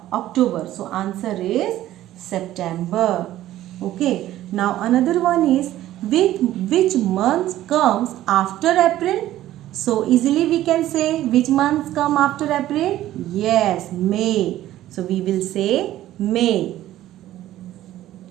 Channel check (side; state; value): left; quieter; 13.9 dB